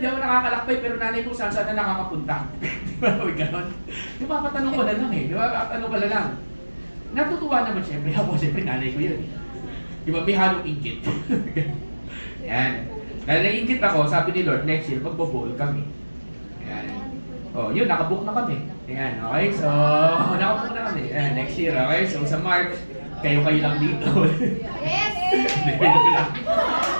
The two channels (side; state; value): both; inverted; correlation -1.00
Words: ako nakakalakbay pero nanay ko saan na nakakapunta. Di ba? Ganun. Di ba? Patanong ko na lang eh. Di ba? Patanong ko na lang. Natutuwa naman siyempre ako. Siyempre nanay ko yun. Di ba? May halong ingkit. Yan. Dahil naiingkit ako, sabi ni Lord, next year, magbo-bowl kami. Yan. Oh, yun, nakabook na kami. Ayan, okay? So, nakabook na kami. Ayan, next year, okay? So, sa March, kayo lang dito. Yes!